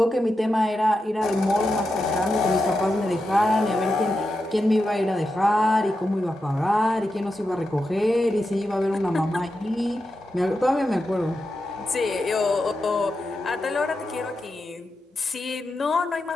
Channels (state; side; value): normal; both; correlation 0.88